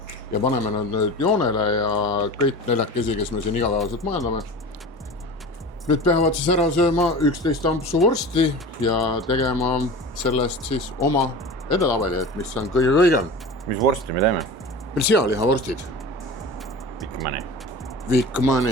ja paneme nad nüüd joonele ja kõik neljakesi, kes me siin igapäevaselt majandame. Nüüd peavad siis ära sööma 11 ampsu vorsti ja tegema sellest siis oma edetabeli, et mis on kõige kõigem. Mis vorsti me teeme? Meil sealihavorstid.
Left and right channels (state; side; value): normal; both; correlation 0.35